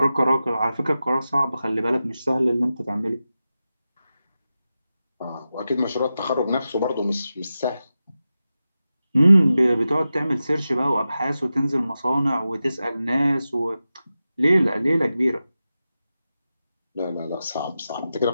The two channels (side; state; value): both; inverted; correlation -0.92